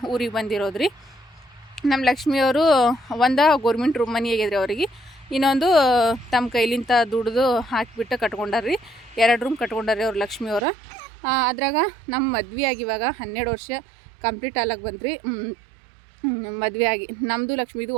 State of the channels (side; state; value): left; drops out; at 10.7 s